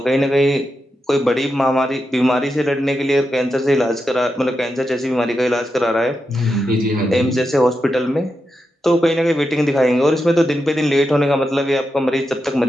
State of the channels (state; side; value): normal; both; correlation 0.87